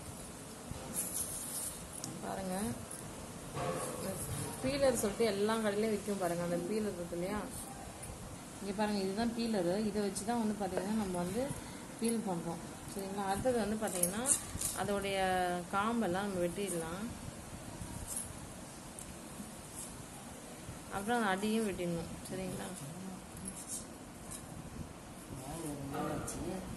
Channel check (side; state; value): both; identical; correlation 1.00